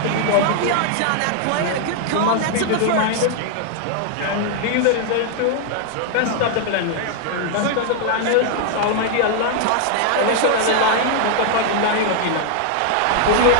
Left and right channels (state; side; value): different; both; correlation 0.00